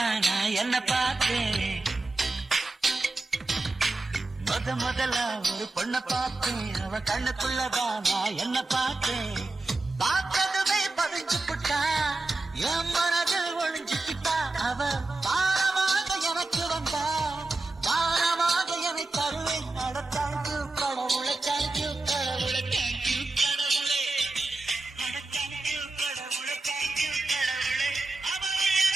நான் என்ன பார்த்தேன். முதல்ல ஒரு பொண்ண பார்த்தேன், அவ கண்ணுக்குள்ளதான் நான் என்ன பார்த்தேன். பார்த்ததுமே பதிஞ்சு புட்டா, என் மனதில் ஒழிஞ்சுக்கிட்டா. அவ பாரமாக எனக்கு வந்தா, பாரமாக என்னை தருவேன். நடத்தாய்க்கு கடவுளை, தேங்க்யூ கடவுளை, தேங்க்யூ கடவுளே, தேங்க்யூ கடவுளை, தேங்க்யூ கடவுளே. அவள்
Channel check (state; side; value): quieter; left; 3.1 dB